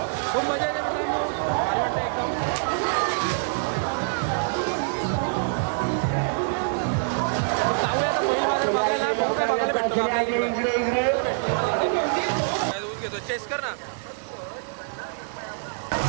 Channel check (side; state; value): left; silent; 61 dB below the other